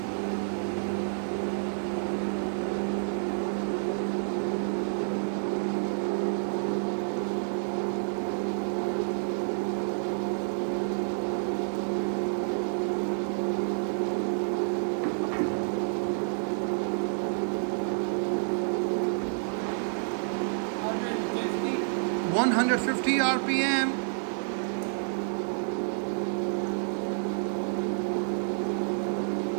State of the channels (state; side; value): silent; left; digital silence